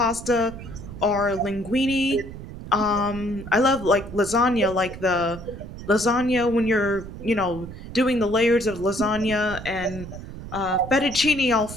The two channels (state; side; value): noise; right; rumble, 12 dB below the sound